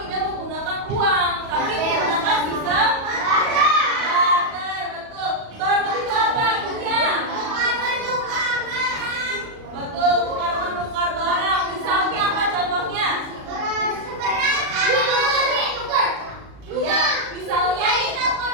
tidak menggunakan uang, tapi menggunakan sistem barter. Betul. Barter itu apa artinya? Betul, tukar menukar barang. Misalnya apa contohnya?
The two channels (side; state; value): left; late; 37 ms